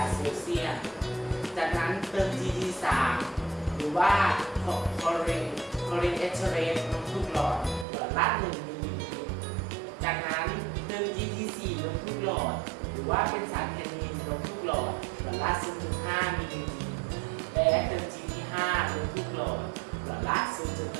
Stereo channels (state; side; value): drops out; left; at 7.9 s